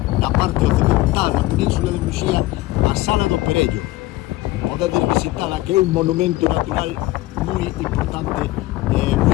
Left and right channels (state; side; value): quieter; right; 18.0 dB